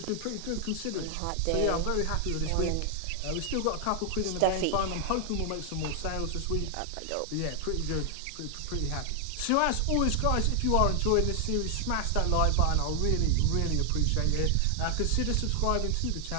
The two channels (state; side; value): different; both; correlation 0.00